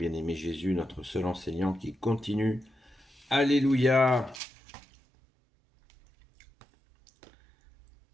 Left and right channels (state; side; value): drops out; left; at 4.4 s